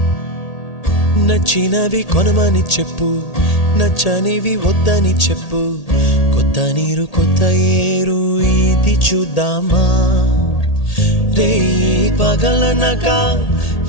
నచ్చినవి కొనమని చెప్పు, నచ్చనివి వద్దని చెప్పు. కొత్త నీరు కొత్త ఏరు ఇది చూద్దామా? రే పగలనక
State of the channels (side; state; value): right; late; 1.8 ms